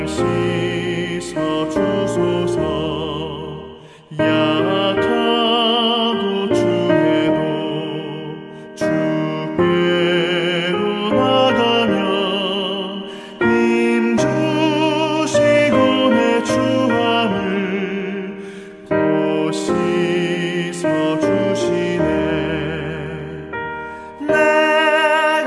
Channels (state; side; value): identical; both; correlation 1.00